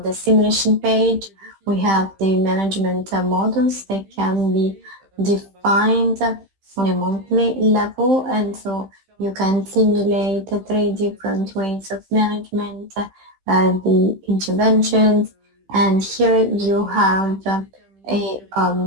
the simulation page. We have the management models that can be defined on a monthly level, and so you can simulate 3 different ways of management, the interventions, and here you have a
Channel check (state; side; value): late; left; 15 ms